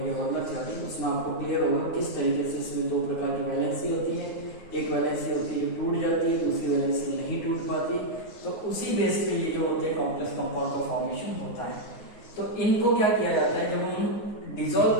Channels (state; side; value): late; right; 9.5 ms